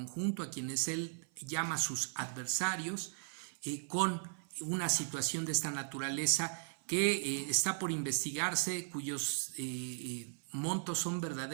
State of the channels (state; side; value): silent; left; 53 dB below the other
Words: a quienes él llama sus adversarios, con una situación de esta naturaleza que está por investigarse, cuyos montos son